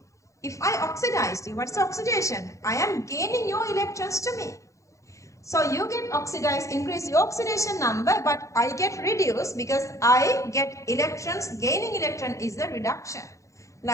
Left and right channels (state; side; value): late; right; 0.15 ms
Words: If I oxidize you, what's oxidation? I am gaining your electrons to me. So you get oxidized, increase your oxidation number, but I get reduced because I get electrons. Gaining electron is the reduction.